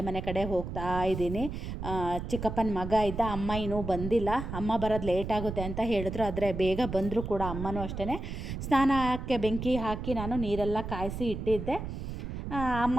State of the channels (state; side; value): noise; right; rumble, 6 dB below the sound